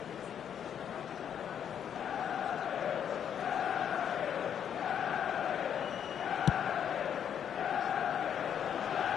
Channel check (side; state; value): right; quieter; 8.8 dB